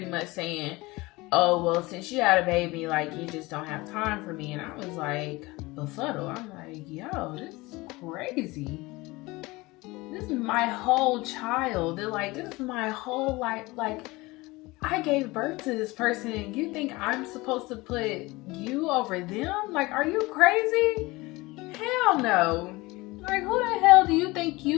much saying, oh, well, since you had a baby, like, you just don't have time for me. And I was like, befuddled. I'm like, yo, this is crazy. This is my whole child. They're like, this is my whole life. Like, I gave birth to this person, and you think I'm supposed to put you over them? Like, are you crazy? Hell no. Like, who the hell do you think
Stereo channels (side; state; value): right; quieter; 21.9 dB